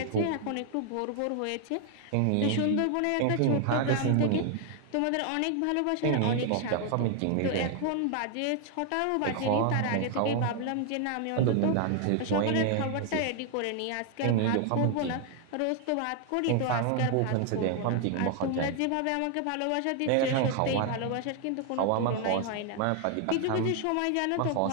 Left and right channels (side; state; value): both; different; correlation 0.00